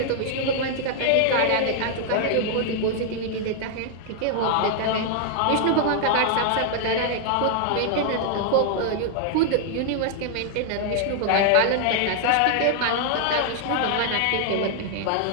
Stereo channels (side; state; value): both; different; correlation 0.00